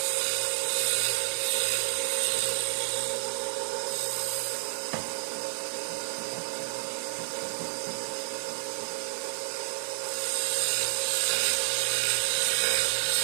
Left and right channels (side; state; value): left; silent; digital silence